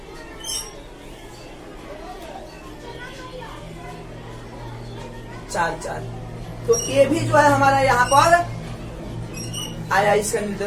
चार 4, तो ये भी जो है हमारा यहाँ पर आया, इसका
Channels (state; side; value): identical; both; correlation 1.00